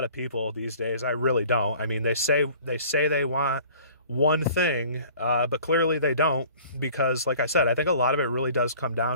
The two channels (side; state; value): both; inverted; correlation -0.49